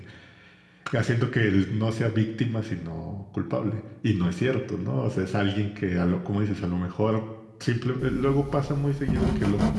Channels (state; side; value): identical; both; correlation 1.00